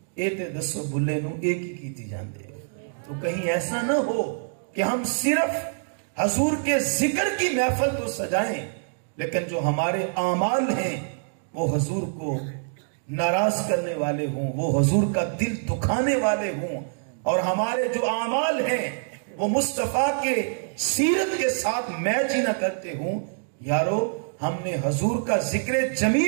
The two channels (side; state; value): left; silent; digital silence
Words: اے تے دسو بھلے نو ایک ہی کیتی جاندے ہو۔ تو کہیں ایسا نہ ہو کہ ہم صرف حضور کے ذکر کی محفل تو سجائیں، لیکن جو ہمارے اعمال ہیں وہ حضور کو ناراض کرنے والے ہوں، وہ حضور کا دل دکھانے والے ہوں، اور ہمارے جو اعمال ہیں وہ مصطفیٰ کے سیرت کے ساتھ میچ ہی نہ کرتے ہوں۔ یارو ہم نے حضور کا ذکر